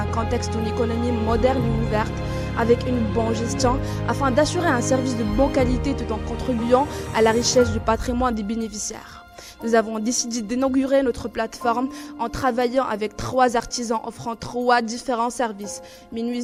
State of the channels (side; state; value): both; identical; correlation 1.00